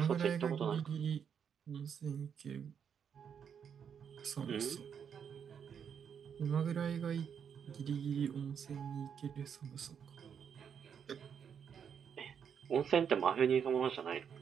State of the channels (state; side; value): quieter; left; 7.6 dB